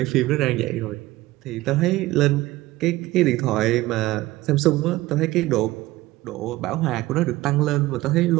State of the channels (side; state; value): left; quieter; 17.9 dB